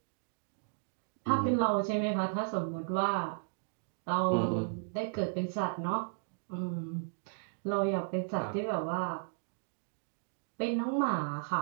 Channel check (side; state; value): left; silent; digital silence